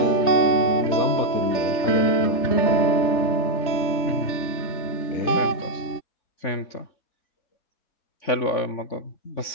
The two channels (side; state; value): right; late; 3.5 ms